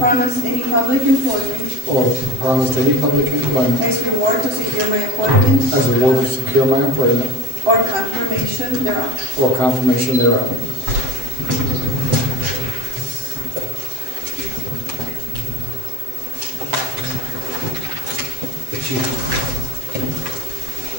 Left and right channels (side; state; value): left; late; 7.8 ms